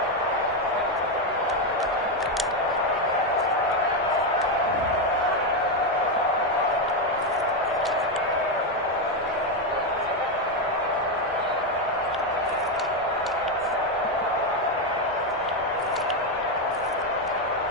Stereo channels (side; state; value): both; normal; correlation 0.07